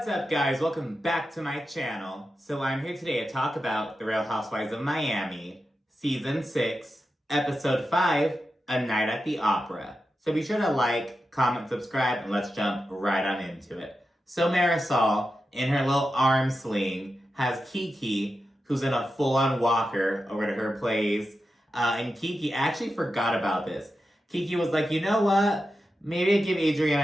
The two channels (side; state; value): both; normal; correlation 0.90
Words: up, guys? Welcome back to my channel. So I'm here today to talk about The Real Housewives of Miami, Season 6, Episode 5, A Night at the Opera. So be sure to like, comment, subscribe, and let's jump right on into it. So Marisol, in her little arm sling, has Kiki, who's in a full-on walker over to her place. And Kiki actually forgot about this. Kiki was like, you know what? Maybe I give